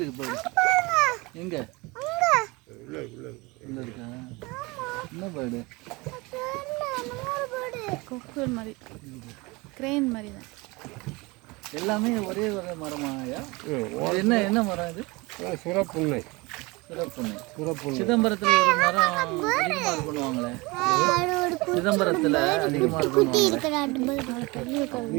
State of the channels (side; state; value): left; quieter; 24.7 dB